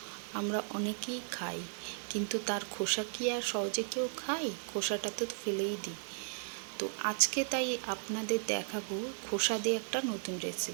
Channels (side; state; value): left; silent; digital silence